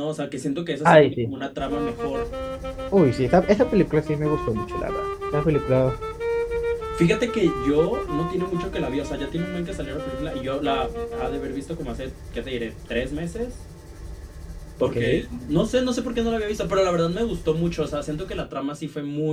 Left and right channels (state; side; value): identical; both; correlation 1.00